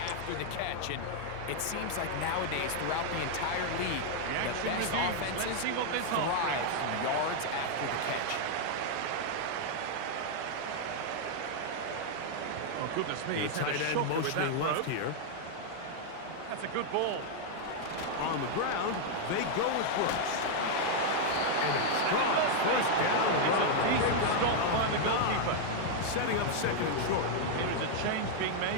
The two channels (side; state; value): both; different; correlation 0.00